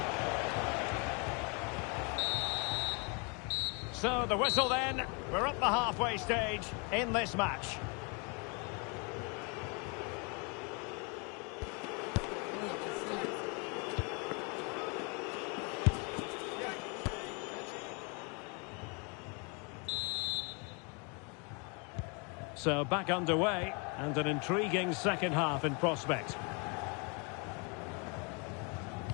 So the whistle then. We're up the halfway stage in this match. So back underway, and an intriguing second half in prospect.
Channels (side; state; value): right; quieter; 33.4 dB